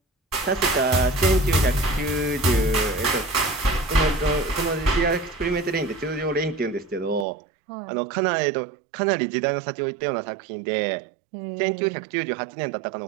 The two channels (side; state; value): left; drops out; at 7.2 s